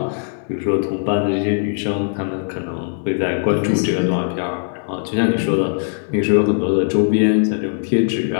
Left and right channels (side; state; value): right; silent; digital silence